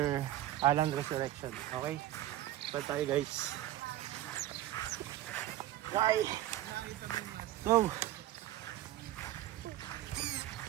Alan Resurrection. Okay? So tayo guys. Bye! Go!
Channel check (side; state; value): left; quieter; 14.1 dB